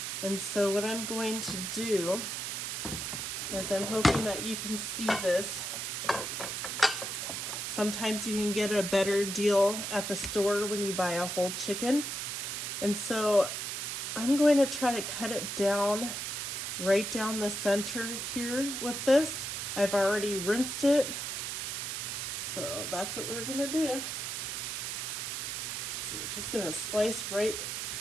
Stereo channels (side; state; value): right; noise; hiss, 3 dB below the sound